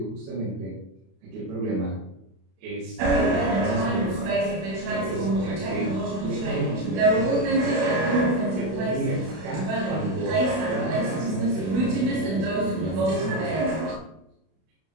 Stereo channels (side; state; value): left; late; 32 ms